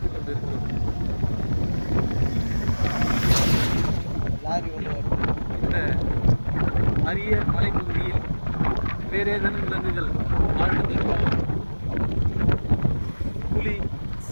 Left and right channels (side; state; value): both; inverted; correlation -1.00